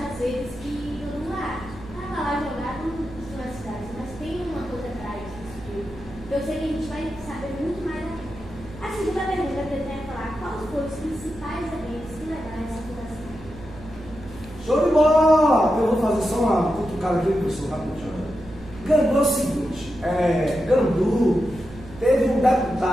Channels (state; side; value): noise; right; hum, 17 dB below the sound